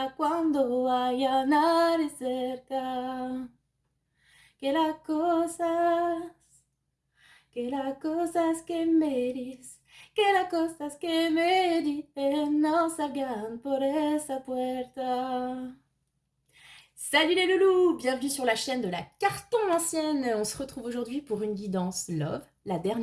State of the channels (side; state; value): both; identical; correlation 1.00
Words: cuando haya nadie cerca. Que las cosas, que las cosas que me dices, que las cosas que me dicen no salgan por esa puerta. Salut les loulous, bienvenue sur la chaîne de la Carton Ancienne. On se retrouve aujourd'hui pour une guidance Love, la